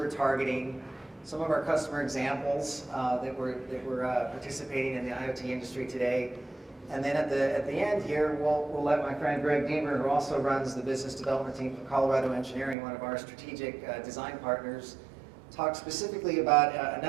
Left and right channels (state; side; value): drops out; left; at 12.8 s